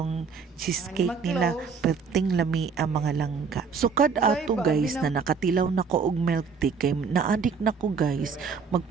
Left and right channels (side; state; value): left; quieter; 5.6 dB